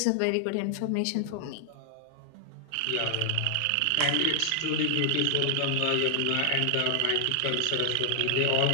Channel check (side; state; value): both; different; correlation 0.00